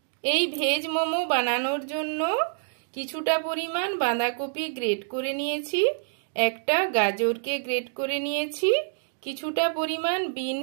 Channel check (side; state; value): left; silent; digital silence